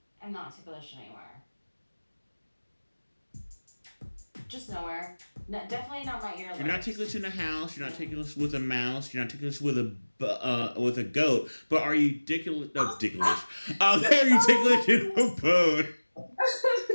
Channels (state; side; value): inverted; both; correlation -1.00